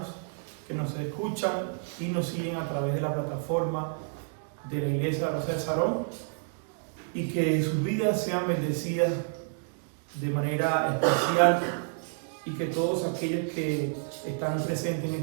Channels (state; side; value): silent; left; digital silence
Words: que nos escuchan y nos siguen a través de la plataforma de la iglesia de la Rosa de Sarón, y que sus vidas sean bendecidas de manera especial, y que todos aquellos que están presentes en